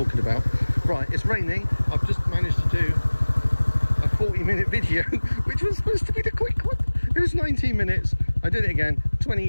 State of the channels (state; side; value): inverted; both; correlation -1.00